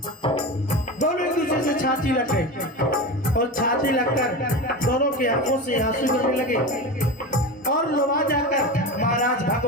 दोनों एक दूसरे से छाती लग गए और छाती लगकर दोनों की आंखों से आंसू गिरने लगे। और लोवा जाकर महाराज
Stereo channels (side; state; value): both; normal; correlation 0.25